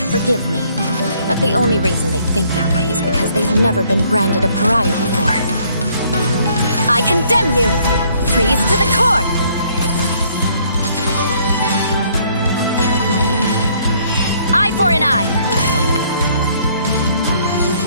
forgive me. But the only reason they think that way is because they've never been branded a pariah before. I condemn you! Freeze to the core! Eye for an eye!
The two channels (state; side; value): inverted; both; correlation -0.64